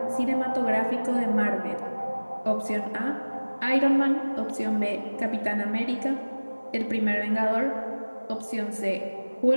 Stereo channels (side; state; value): both; inverted; correlation -1.00